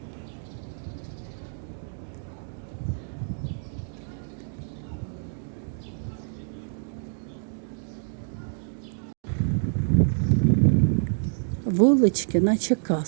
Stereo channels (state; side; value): silent; left; digital silence